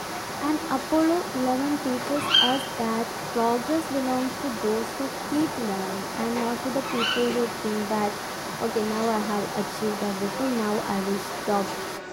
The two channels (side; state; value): both; identical; correlation 1.00